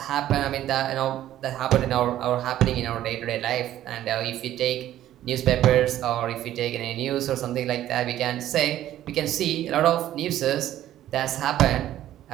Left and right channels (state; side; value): quieter; left; 12.8 dB